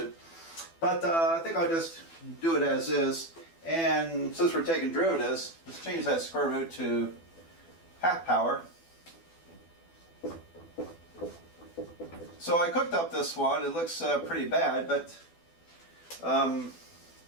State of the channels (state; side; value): late; right; 12 ms